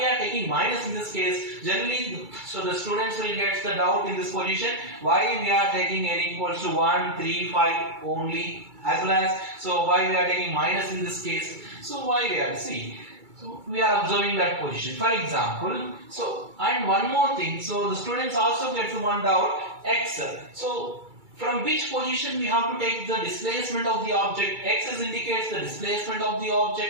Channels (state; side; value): late; left; 2.3 ms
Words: are taking minus in this case? Generally, so the students will get the doubt in this position. Why we are taking n equals to 1, 3, 5 only, as well as, so why we are taking minus in this case? So why we are, see, so we are observing that position. For example, so, and one more thing, so the students also get one doubt, x. So from which position we have to take the displacement of the object? X indicates the displacement of the